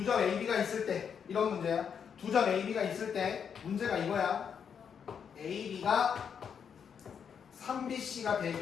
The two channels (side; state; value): right; quieter; 7.3 dB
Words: 점 AB가 있을 때. 이런 문제야. 두 점 AB가 있을 때. 문제가 이거야. AB가 3BC가